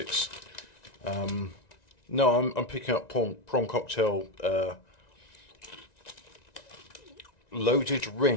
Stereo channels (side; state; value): right; late; 1.9 ms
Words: No, I'm picking up prawn cocktail loaded